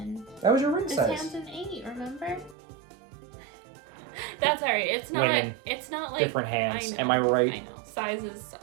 That was your ring This size. hand's an 8. Remember? That's alright. It's not. Women, It's not like different hands. I know, Am I right? I know. Sizes suck.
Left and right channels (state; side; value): drops out; left; at 2.6 s